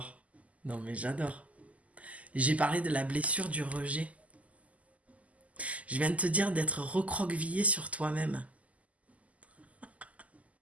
Non mais j'adore. J'ai parlé de la blessure du rejet. Je viens de te dire d'être recroquevillé sur toi-même.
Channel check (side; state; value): left; late; 0.071 ms